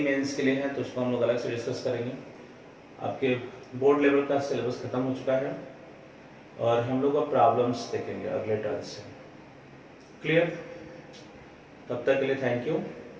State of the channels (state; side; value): identical; both; correlation 1.00